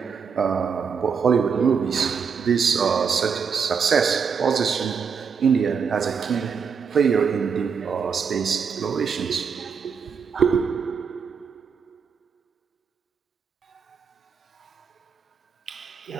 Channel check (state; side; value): quieter; left; 6.2 dB